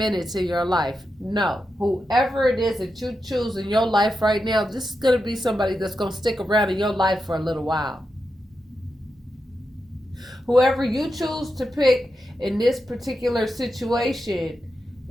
in your life. No, whoever it is that you choose in your life right now, this is gonna be somebody that's gonna stick around in your life for a little while. Whoever you choose to pick in this particular situation,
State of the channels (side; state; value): both; normal; correlation 0.88